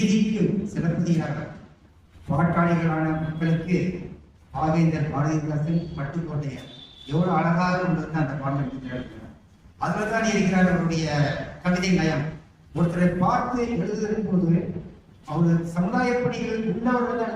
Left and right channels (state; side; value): identical; both; correlation 1.00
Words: சிலப்பதிகாரர், பாட்டாளிகளான மக்களுக்கு பாவேந்தர் பாரதிதாசன், பட்டுக்கோட்டையர். எவ்வளவு அழகாக கொண்டு வந்து அந்த பாடல் எடுக்கிறார். அதுல தான் இருக்கிறார் அவருடைய கவிதை நயம். ஒருத்தரை பார்த்து எழுதும் போது அவர் சமுதாய பணிகள் உள்ளவர்கள் தான்